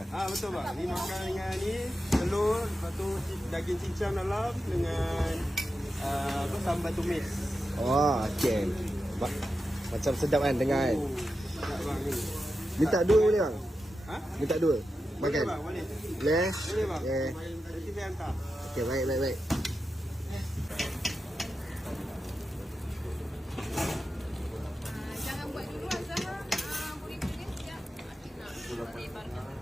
Betul bang. Ni makan dengan ni telur, lepas tu daging cincang dalam dengan sambal tumis. Oh, okey. Macam sedap kan dengar kan? Sedap bang ni. Minta dua boleh bang? Ha? Minta dua? Makan? Boleh bang, boleh. Boleh? Boleh bang. Okay. Nanti saya hantar. Okey, baik. Jangan buat dulu Azhar. Burrito dia sekejap. Asyik nak lebarkan.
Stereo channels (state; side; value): normal; both; correlation 0.90